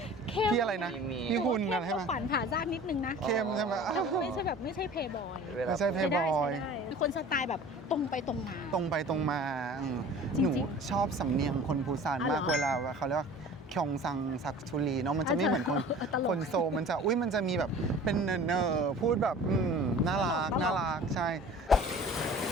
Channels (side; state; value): both; normal; correlation 0.43